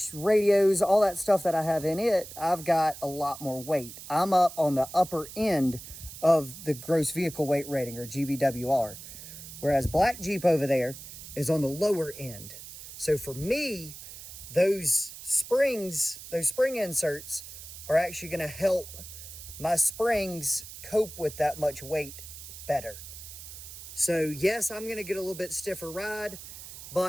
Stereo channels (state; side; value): noise; right; hiss, 13 dB below the sound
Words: radios, all that stuff that I have in it, I've got a lot more weight. I'm up on the upper end of the gross vehicle weight rating, or GVWR. Whereas Black Jeep over there is on the lower end. So for me, those spring inserts are actually going to help my springs cope with that much weight better. So yes, I'm going to get a little bit stiffer ride,